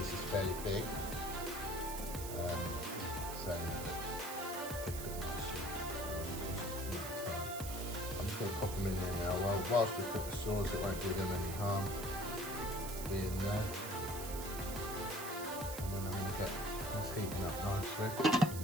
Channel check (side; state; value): right; noise; hiss, 8 dB below the sound